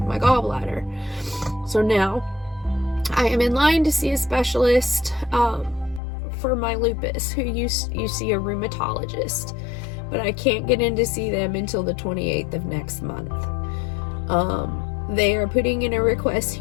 my gallbladder. So now I am in line to see a specialist for my lupus, who you see a rheumatologist. But I can't get in to see them until the 28th of next month. They are putting in a request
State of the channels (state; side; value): drops out; right; at 6.0 s